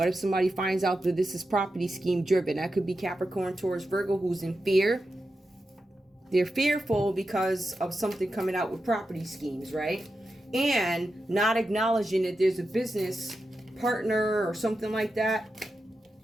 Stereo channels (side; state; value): both; normal; correlation 0.89